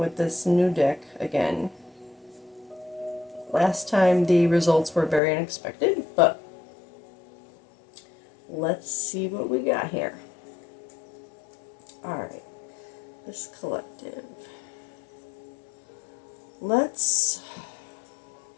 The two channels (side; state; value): right; drops out; at 5.2 s